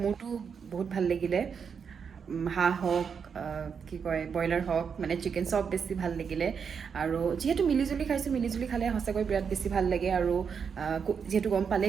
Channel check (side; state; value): left; quieter; 6.5 dB